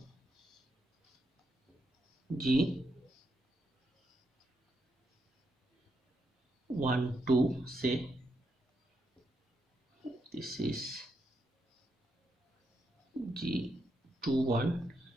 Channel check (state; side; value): normal; both; correlation 0.81